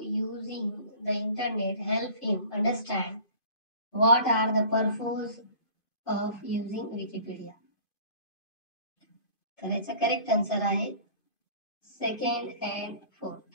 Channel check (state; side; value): late; right; 2.5 ms